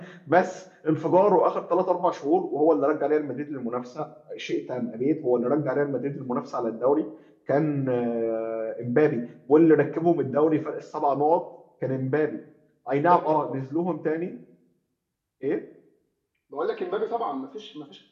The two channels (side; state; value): both; identical; correlation 1.00